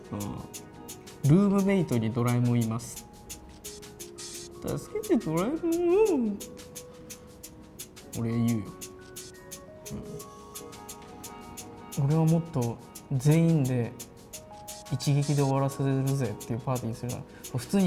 ルームメイトにドラえもんいます、助けてドラえもん、俺言うよ、俺はもっと全員で一撃で終わらせるぜっていうパーティーするのは普通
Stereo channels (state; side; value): identical; both; correlation 1.00